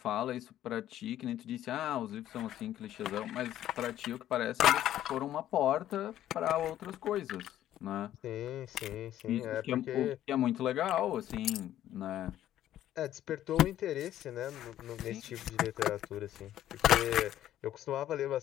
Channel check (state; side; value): quieter; right; 12.4 dB